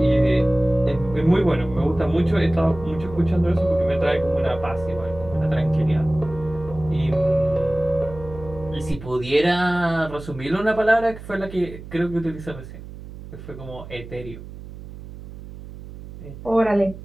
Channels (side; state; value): right; noise; hum, 14 dB below the sound